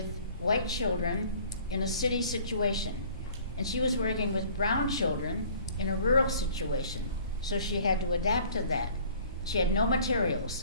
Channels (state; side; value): inverted; both; correlation -0.52